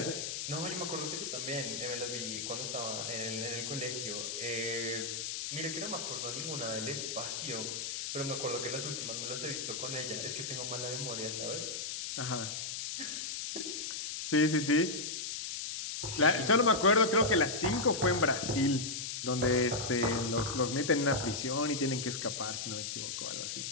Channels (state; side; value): noise; left; hiss, 4 dB below the sound